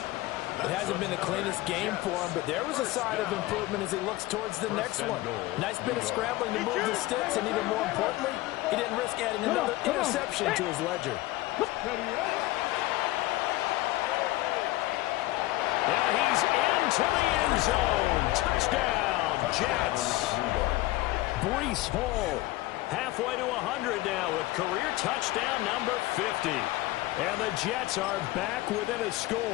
It hasn't been the cleanest game for him, but there was a sign of improvement as he looks towards the next one. Nice bit of scrambling to move the sticks, and even more importantly, he didn't risk adding another interception to his ledger. Now he's into the end zone. Touchdown, Jets. Breece Hall halfway to 100 now with career touchdown number 50. And the Jets are back within a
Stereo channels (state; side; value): quieter; right; 18.2 dB